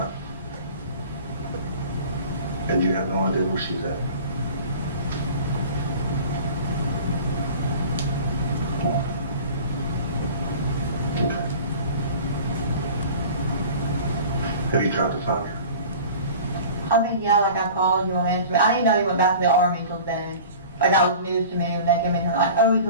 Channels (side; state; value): both; inverted; correlation -0.41